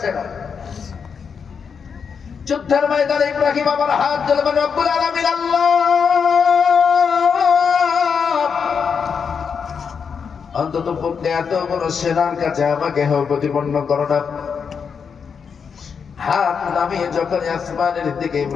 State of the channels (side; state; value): right; quieter; 6.3 dB